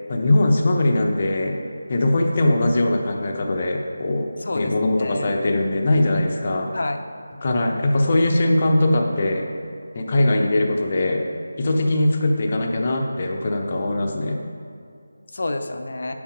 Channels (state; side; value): inverted; both; correlation -0.94